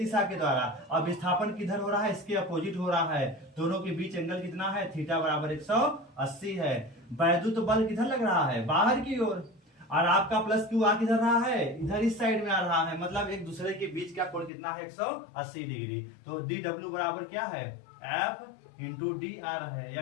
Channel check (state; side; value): drops out; right; at 14.5 s